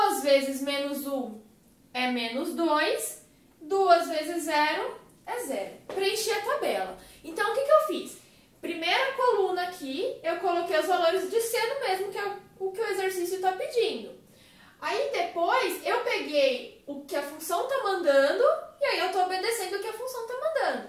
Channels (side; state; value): both; identical; correlation 1.00